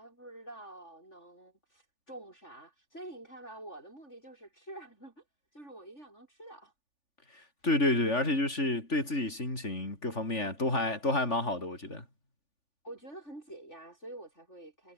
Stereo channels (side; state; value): right; late; 3.5 ms